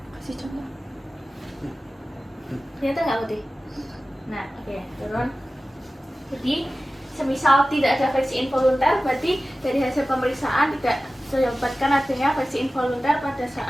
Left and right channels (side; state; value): both; normal; correlation 0.96